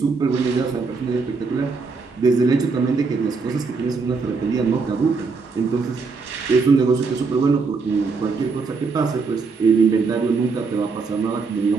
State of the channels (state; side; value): quieter; left; 4.6 dB